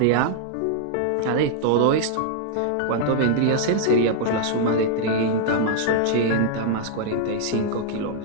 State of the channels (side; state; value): both; different; correlation -0.01